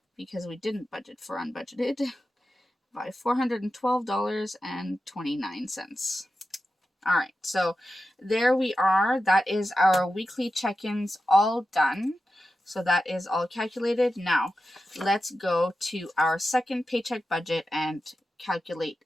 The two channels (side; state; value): both; normal; correlation 0.92